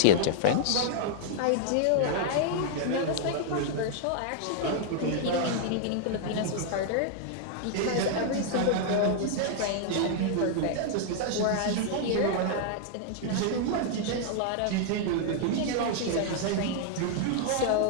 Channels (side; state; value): both; different; correlation -0.01